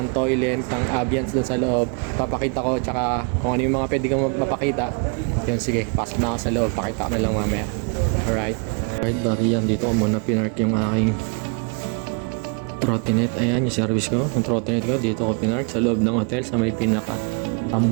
toilet, ng ambience doon sa loob. Papakita ko, tsaka kung ano yung mga pwede kong mapakita. Yun, sige, pasok na ako sa loob, pakita ko na lang mamaya. Alright. Alright, bari yan. Dito ko muna pinark yung aking trottinette. Ayan, yung service ko. Yung trottinette ko, dito ko pinark sa loob ng hotel sa may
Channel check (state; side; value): quieter; left; 36.7 dB